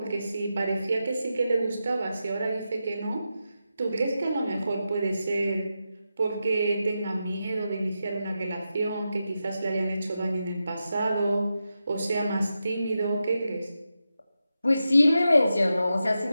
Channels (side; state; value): both; inverted; correlation -0.89